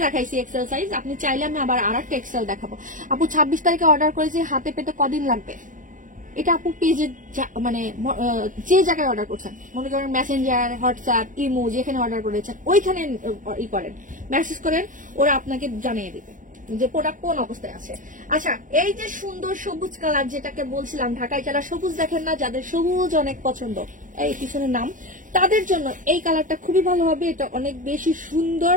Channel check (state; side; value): late; left; 0.38 ms